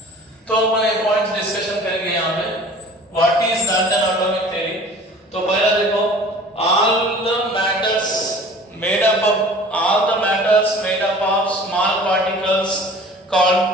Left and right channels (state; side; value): normal; both; correlation 0.45